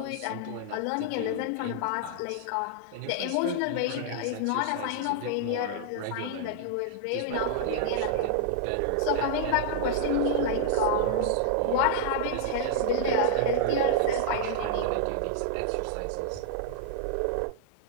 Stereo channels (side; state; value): both; different; correlation -0.01